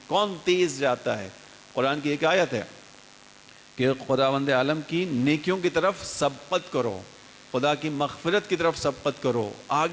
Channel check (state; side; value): identical; both; correlation 1.00